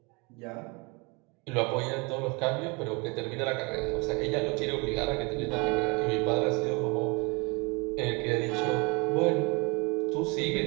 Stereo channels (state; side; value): quieter; left; 28.8 dB